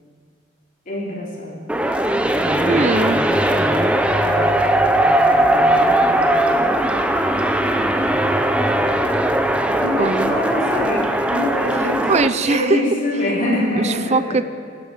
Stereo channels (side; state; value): both; normal; correlation 0.65